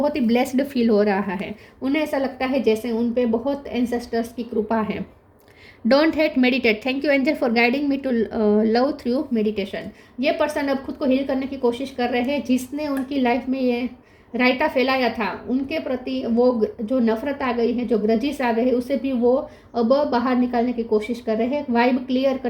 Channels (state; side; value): identical; both; correlation 1.00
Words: ही ब्लेस्ड फील हो रहा है। उन्हें ऐसा लगता है जैसे उन पे बहुत एंसेस्टर्स की कृपा है। Don't hate, meditate. Thank you angel for guiding me to love through meditation. ये पर्सन अब खुद को हील करने की कोशिश कर रहे हैं। जिसने उनकी लाइफ में ये रायता फैलाया था, उनके प्रति वो जो नफरत आ गई है, जो ग्रजिस आ गए हैं, उसे भी वो अब बाहर निकालने की कोशिश कर रहे हैं। वाइब क्लियर